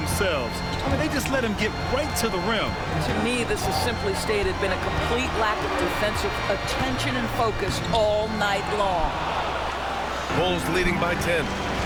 I mean, they just let him get right to the rim. To me, this has simply stated been a complete lack of defensive attention and focus all night long. Bulls leading by 10.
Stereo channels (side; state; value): both; identical; correlation 1.00